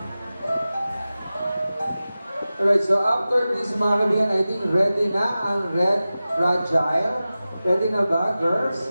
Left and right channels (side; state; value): both; inverted; correlation -0.95